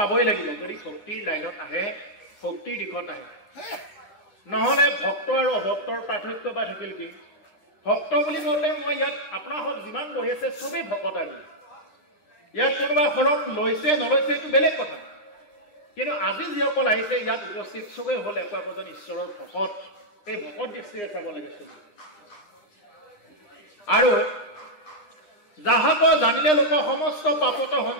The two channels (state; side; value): late; right; 9.8 ms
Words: লাগিব যদি ভক্তিৰ লাইনত আহে ভক্তিৰ দিশত আহে নহলে ভক্ত আৰু অভক্তৰ পাৰ্থক্য বা থাকিল কি ভক্ত বুলি কওঁতে মই ইয়াত আপোনালোক যিমান বহি আছে চবেই ভকত আজি ইয়াত কোনোবা ফলত লৈছে নলৈছে এইটো বেলেগ কথা কিন্তু আজি যিসকল আহিছে ইয়াত উপস্থিত চবেই হ'ল একোজন ঈশ্বৰৰ ভকত এই ভকত দৃষ্টিৰে চাব লাগে চবেই আৰু যাহাক জানিলে লোক সমস্ত পাপত